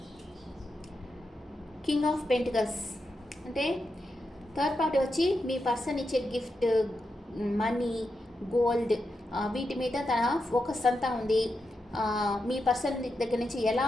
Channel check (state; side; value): normal; both; correlation 0.87